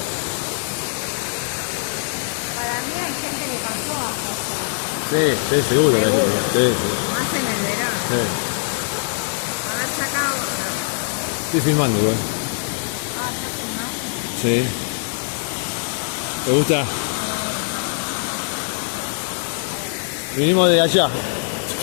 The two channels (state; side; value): silent; right; digital silence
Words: Para mí hay gente que pasó a pasar. Sí, sí, seguro. Seguro. Sí, sí. Más en el verano. Sí. Haber sacado. Estoy filmando igual. Ah, ¿ya filmaste? Sí. ¿Te gusta? Vinimos de allá.